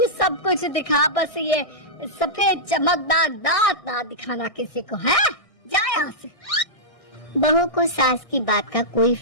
सब कुछ दिखा, बस ये सफेद चमकदार दांत ना दिखाना किसी को, है? जा यहाँ से। बहू को सास की बात का कोई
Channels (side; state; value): right; late; 1.6 ms